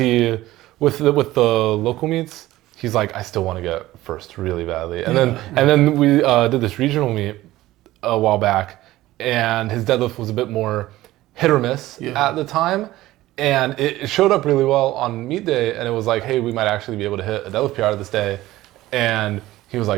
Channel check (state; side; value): quieter; left; 16.4 dB